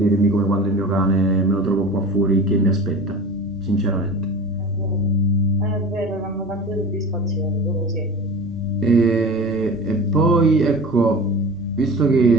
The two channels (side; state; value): both; normal; correlation 0.34